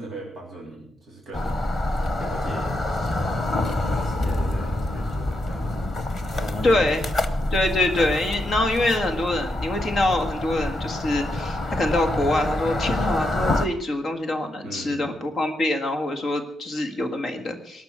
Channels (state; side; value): normal; both; correlation 0.83